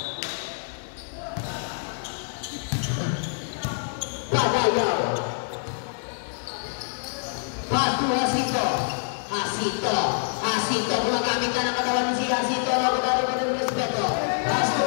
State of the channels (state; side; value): silent; right; digital silence